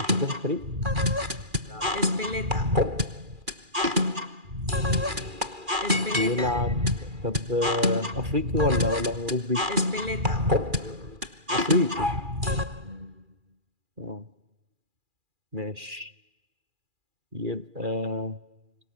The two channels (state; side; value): late; left; 2.4 ms